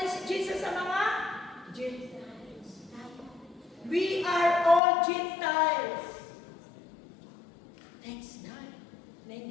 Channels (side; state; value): right; drops out; at 4.8 s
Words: si Jesus sa mga Gentiles. We are all Gentiles. Thanks God na